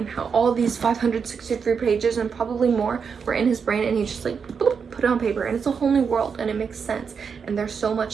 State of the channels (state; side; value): quieter; left; 6.1 dB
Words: how all these 563 pages and probably more were in his brain, and he just like boop, put it on paper, and it's a whole new world and it makes sense. And there's so